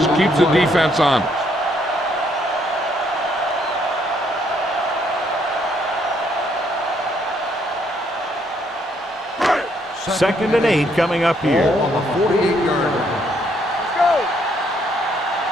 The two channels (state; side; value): normal; both; correlation 0.70